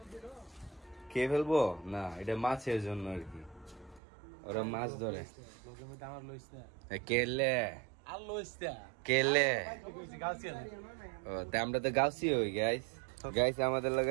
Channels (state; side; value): drops out; left; at 4.0 s